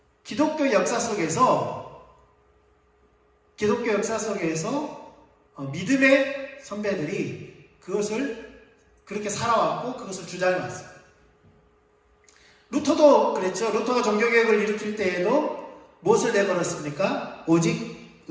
기독교 역사 속에서 믿음의 선배들이 그것을 그렇게 살아왔고 그것을 주장해왔어요. 루터도 그랬죠. 루터가 종교개혁을 일으킬 때에도 무엇을 내걸었습니까? 오직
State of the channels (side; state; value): both; identical; correlation 1.00